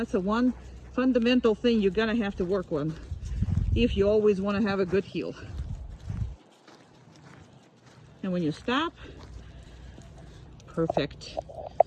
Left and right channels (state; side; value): identical; both; correlation 1.00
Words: the one fundamental thing you're gonna have to work on if you always want to have a good heel. And when you stop, perfect.